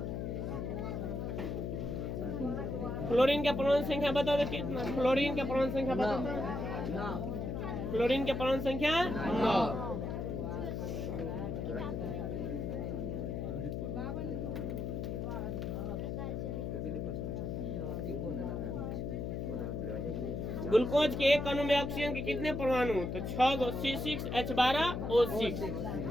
फ्लोरीन के परमाणु संख्या बता दो कितना? फ्लोरीन के परमाणु संख्या बता दो। फ्लोरीन के परमाणु संख्या 9। ग्लूकोज के एक अणु में ऑक्सीजन के कितने परमाणु? तो 6 गो C6H12O6।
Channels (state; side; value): noise; left; hum, 3 dB below the sound